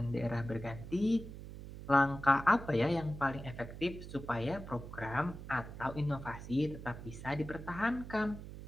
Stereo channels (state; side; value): noise; right; hum, 11 dB below the sound